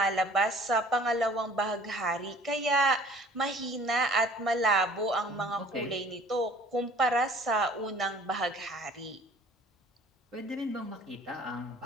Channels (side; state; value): both; normal; correlation 0.51